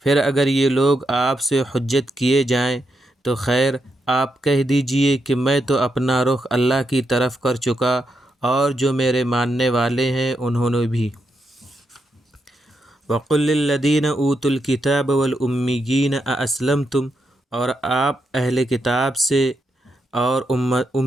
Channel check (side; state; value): both; normal; correlation 0.83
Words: پھر اگر یہ لوگ آپ سے حجت کیے جائیں تو خیر، آپ کہہ دیجئے کہ میں تو اپنا رخ اللہ کی طرف کر چکا اور جو میرے ماننے والے ہیں انہوں نے بھی۔ وقل للذین اوتوا الکتاب والامیین ااسلمتم۔ اور آپ اہل کتاب سے اور